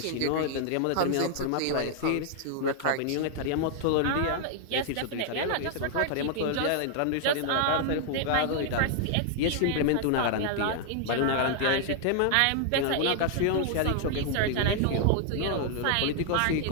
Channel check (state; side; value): different; both; correlation 0.00